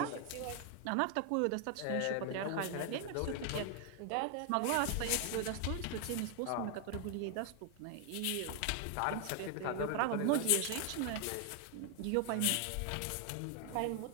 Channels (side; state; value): both; different; correlation 0.01